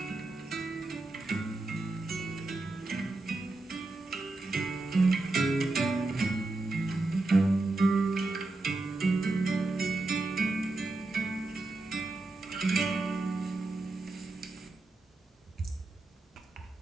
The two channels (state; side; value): quieter; left; 3.1 dB